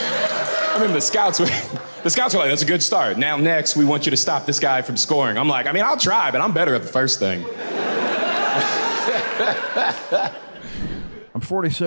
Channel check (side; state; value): both; inverted; correlation -1.00